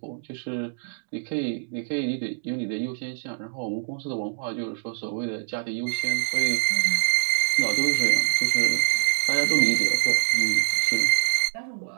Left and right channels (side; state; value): left; silent; digital silence